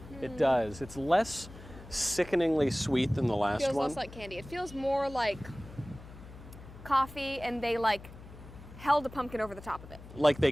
it does. It's less sickeningly sweet than the last Feels one. less like candy. It feels more like coffee, and they like held a pumpkin over the top of it. Like they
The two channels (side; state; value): left; noise; hum, 17 dB below the sound